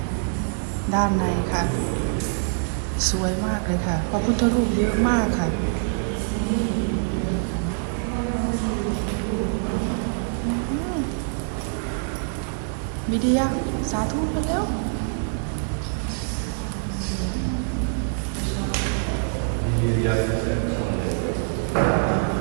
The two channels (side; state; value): left; silent; digital silence